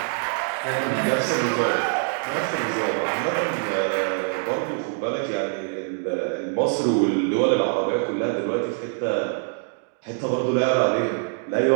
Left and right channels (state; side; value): silent; left; 59 dB below the other